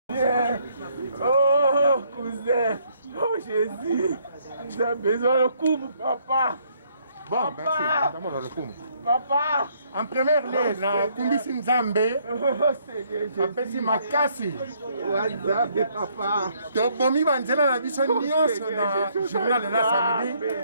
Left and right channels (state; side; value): inverted; both; correlation -0.68